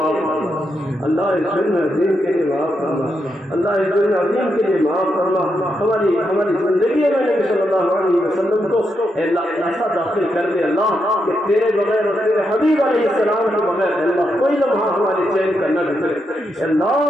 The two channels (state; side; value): normal; both; correlation 0.83